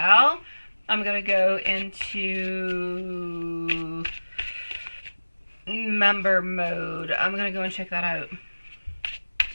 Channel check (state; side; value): inverted; both; correlation -1.00